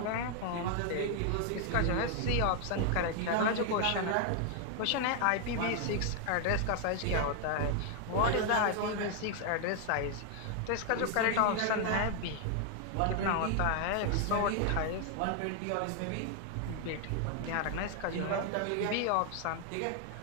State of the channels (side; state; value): both; different; correlation 0.00